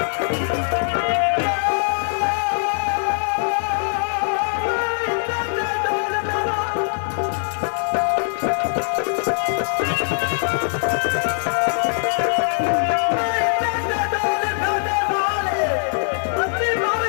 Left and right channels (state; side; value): silent; right; digital silence